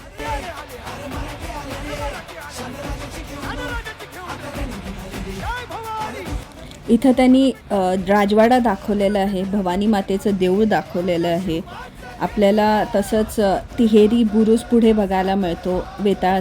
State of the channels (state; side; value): identical; both; correlation 1.00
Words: इथं त्यांनी राजवाडा दाखवलेला आहे, भवानी मातेचं देऊळ दाखवलेलं आहे आपल्याला. तसंच तिहेरी बुरुज पुढे बघायला मिळतो,